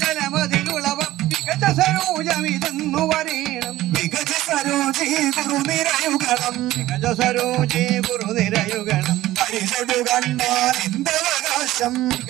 മികച്ച സരോജമിതെന്നു പറയണം മികച്ച സരോജി ഗുരുനിരയുഗണം മികച്ച സരോജി ഗുരുനിരയുഗണം പരിചൊടു കണ്ടാൽ എന്തവകാശം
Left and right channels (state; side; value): quieter; left; 15.7 dB